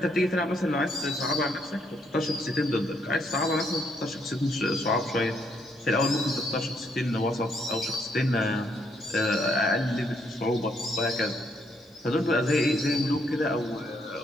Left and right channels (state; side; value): normal; both; correlation 0.72